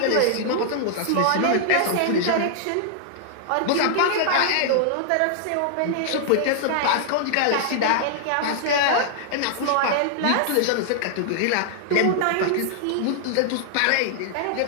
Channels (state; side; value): different; both; correlation -0.01